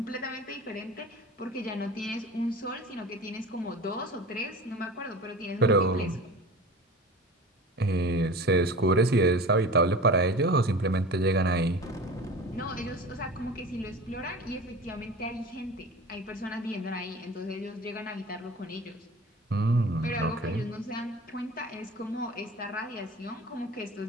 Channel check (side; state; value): both; normal; correlation 0.36